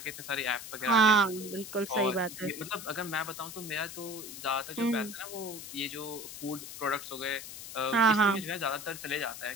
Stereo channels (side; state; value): left; noise; hiss, 11 dB below the sound